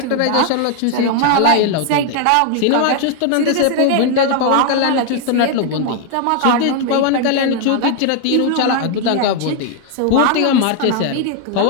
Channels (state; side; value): different; both; correlation 0.00